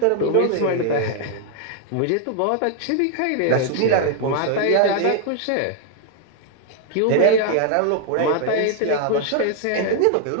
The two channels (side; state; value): both; different; correlation 0.00